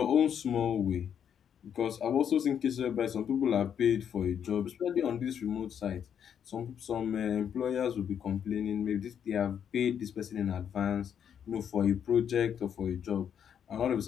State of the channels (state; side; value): quieter; right; 8.5 dB